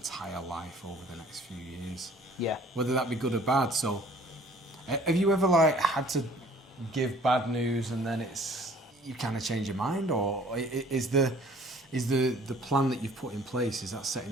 life over the next few years. Yeah. Whether that be good or bad. So have you ever had to give bad news and then you kind of change your mind, or is the plan that you've put in place, is that set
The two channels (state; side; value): normal; both; correlation 0.54